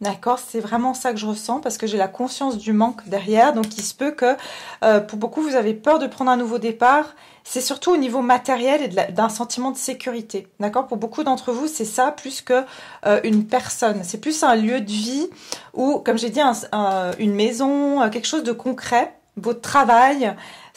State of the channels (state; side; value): identical; both; correlation 1.00